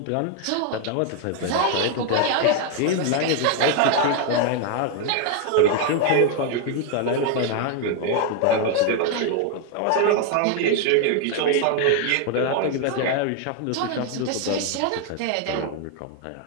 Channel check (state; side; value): different; both; correlation 0.01